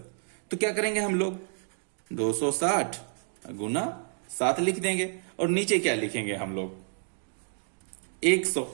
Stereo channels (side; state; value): left; silent; digital silence